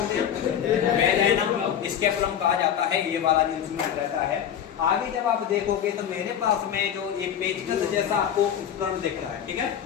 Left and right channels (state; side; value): quieter; right; 9.3 dB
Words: हैं? वेजाइना स्कैपुलम कहा जाता है, ये वाला जो इंस्ट्रूमेंट रहता है। आगे जब आप देखोगे तो मेरे पास में जो एक पेचकस जैसा आपको उपकरण दिख रहा है, ठीक है।